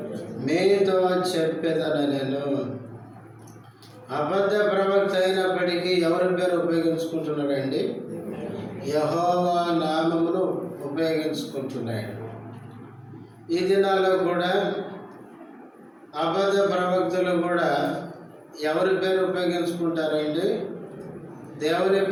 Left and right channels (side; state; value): both; identical; correlation 1.00